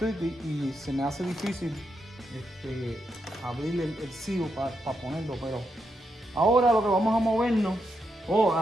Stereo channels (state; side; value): normal; both; correlation 0.83